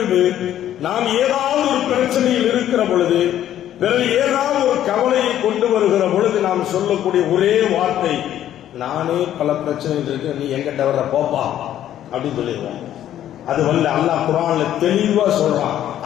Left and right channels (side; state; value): right; quieter; 11.6 dB